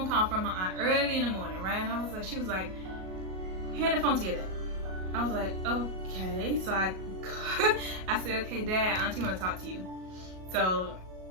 call from my aunt early in the morning, right? And I was like, she was like, hand the phone to your dad. I was like, okay. So I said, okay, Dad, Auntie want to talk to you. So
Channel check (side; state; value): left; late; 38 ms